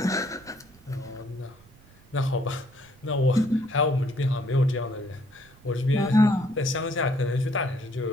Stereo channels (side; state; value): right; noise; rumble, 27 dB below the sound